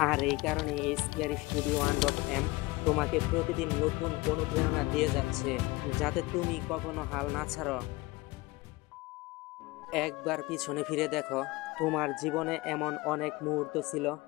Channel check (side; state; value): right; quieter; 22.1 dB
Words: আর এই কারণে এই স্কেয়ারি স্টুডিও 1.m তোমাকে প্রতিদিন নতুন অনুপ্রেরণা দিয়ে যাচ্ছে, যাতে তুমি কখনো হাল না ছাড়ো। একবার পিছনে ফিরে দেখো, তোমার জীবনে এমন অনেক মুহূর্ত ছিল